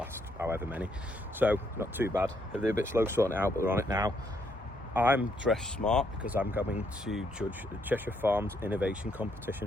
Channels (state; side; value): normal; both; correlation 0.73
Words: however many. So not too bad. They're a bit slow sorting it out, but they're on it now. I'm dressed smart because I'm going to judge the Cheshire Farms Innovation